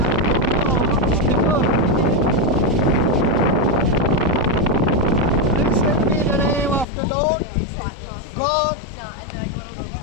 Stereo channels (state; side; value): drops out; right; at 6.9 s